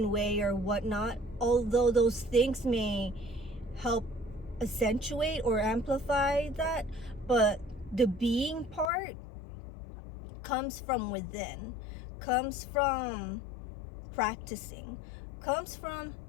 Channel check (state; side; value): drops out; right; at 8.9 s